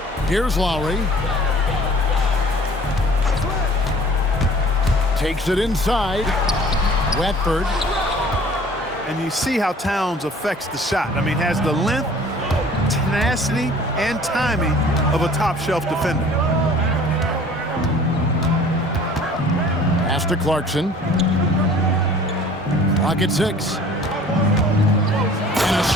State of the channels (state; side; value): normal; both; correlation 0.50